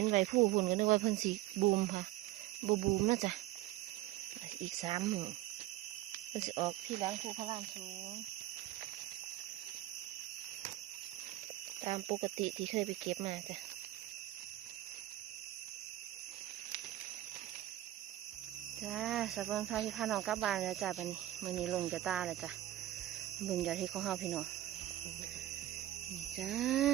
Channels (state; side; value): quieter; left; 15.1 dB